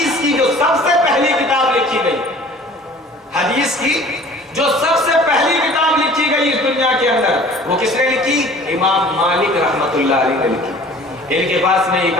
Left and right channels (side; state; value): both; normal; correlation 0.48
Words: کی جو سب سے پہلی کتاب لکھی گئی، حدیث کی جو سب سے پہلی کتاب لکھی گئی اس دنیا کے اندر، وہ کس نے لکھی؟ امام مالک رحمۃ اللہ علیہ نے لکھی۔ ان کے پاس میں ایک